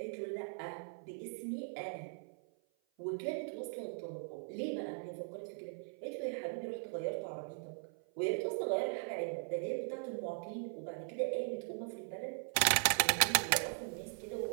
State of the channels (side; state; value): left; silent; 52 dB below the other